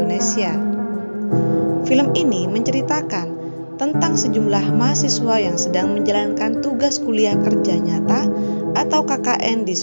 Film ini menceritakan tentang sejumlah mahasiswa yang sedang menjalankan tugas kuliah kerja nyata atau KKN di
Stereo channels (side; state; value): both; inverted; correlation -1.00